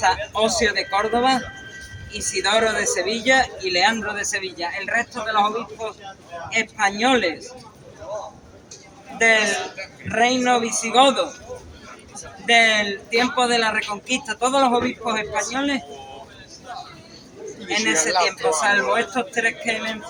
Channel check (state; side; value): identical; both; correlation 1.00